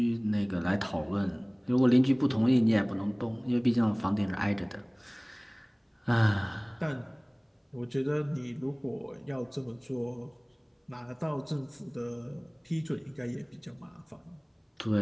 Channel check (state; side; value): identical; both; correlation 1.00